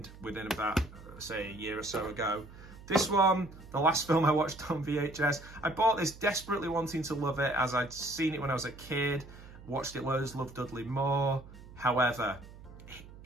within about, say, a year or so ago. This one, the last film I watched on VHS, I bought this desperately wanting to love it as I'd seen it when I was a kid, watched it loads, loved Dudley Moore. However,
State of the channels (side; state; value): right; noise; hum, 18 dB below the sound